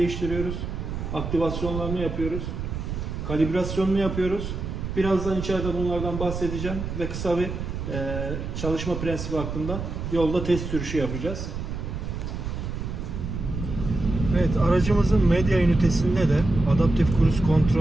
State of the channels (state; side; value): noise; right; rumble, 5 dB below the sound